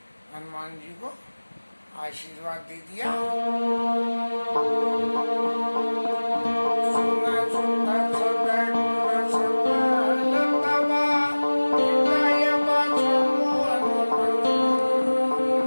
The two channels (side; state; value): both; inverted; correlation -1.00